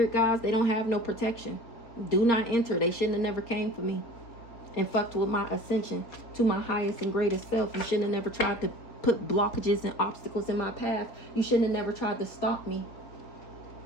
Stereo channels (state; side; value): late; right; 4.3 ms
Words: guys, they don't have no protection. Do not enter. They shouldn't have never came for me and fucked with my ascension to my highest and greatest self. You shouldn't have never tried to put blockages and obstacles in my path. You shouldn't have never tried to stop me.